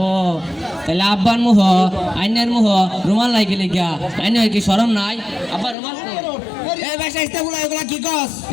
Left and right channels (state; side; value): drops out; right; at 5.8 s